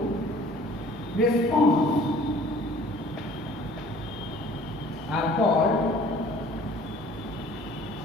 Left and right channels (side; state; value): both; normal; correlation 0.51